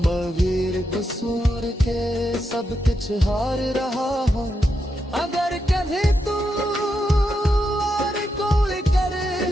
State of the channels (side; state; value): both; normal; correlation 0.84